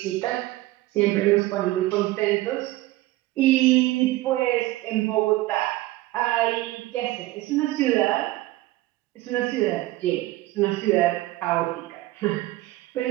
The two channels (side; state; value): left; quieter; 17.6 dB